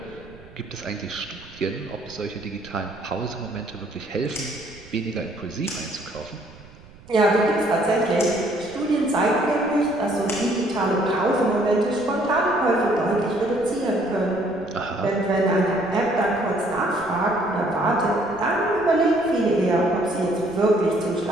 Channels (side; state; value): right; noise; rumble, 22 dB below the sound